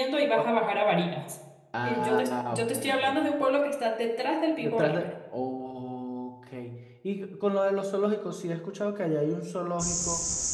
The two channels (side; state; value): both; identical; correlation 1.00